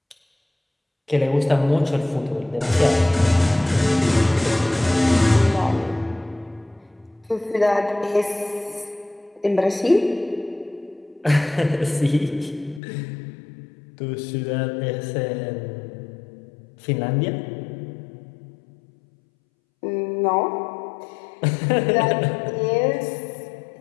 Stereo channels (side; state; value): right; drops out; at 12.8 s